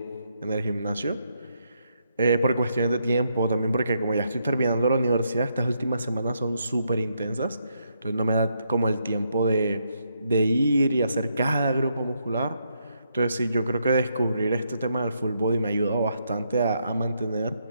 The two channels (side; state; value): both; inverted; correlation -0.78